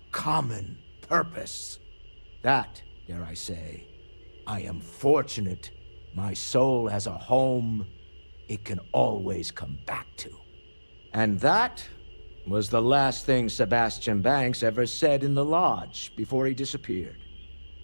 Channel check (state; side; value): inverted; both; correlation -1.00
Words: common purpose. That, dare I say, I am fortunate my soul has a home it can always come back to. And that was the last thing Sebastian Banks ever said in the lodge before he disappeared.